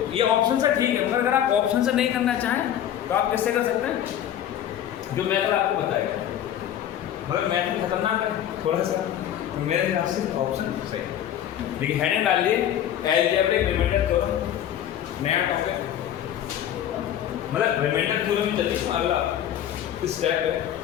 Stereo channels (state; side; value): quieter; right; 10.7 dB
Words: ये ऑप्शन से ठीक है, मगर अगर आप ऑप्शन से नहीं करना चाहें तो आप किससे कर सकते हैं, जो मेथड आपको बताएगा, मगर मेथड खतरनाक है थोड़ा सा, तो मेरे हिसाब से ऑप्शन सही। देखिए हेडिंग डाल लिए अलजेब्रिक रिमाइंडर थ्योरम, नया टॉपिक, मतलब रिमाइंडर थ्योरम ही चलिए, अगला स्टेप है